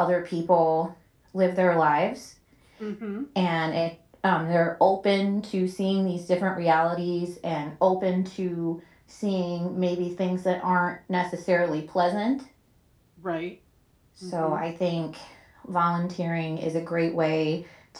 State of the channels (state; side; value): identical; both; correlation 1.00